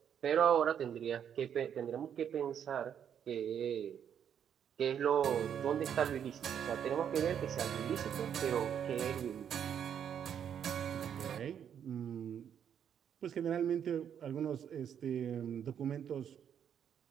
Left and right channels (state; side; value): quieter; left; 8.7 dB